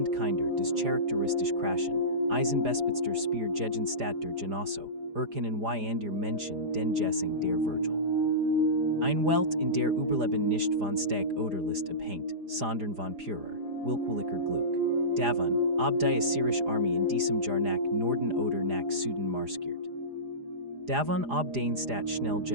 Kinder des charakteristisch Kraschen, Eisenbespitster Spear gegen Stadt der Genosso, erkennen wie an der Menschen den Jessing der Virgil. Ein Welt in der Überleben nicht von Steg oder List abhängt, sondern von purer, willkürlicher Glück. Davon, ob die Assyrische Armee in diesem Jahr nach Norden oder nach Süden marschiert. Davon, ob den Stadt schnell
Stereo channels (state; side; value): late; left; 4.9 ms